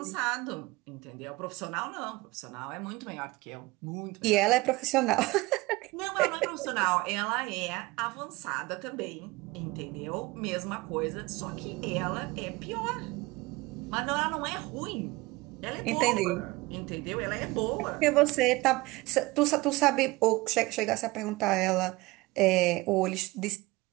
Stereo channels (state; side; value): quieter; left; 21.7 dB